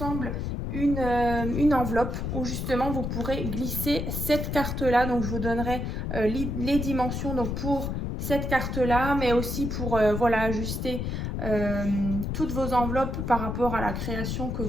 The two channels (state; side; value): noise; left; rumble, 3 dB below the sound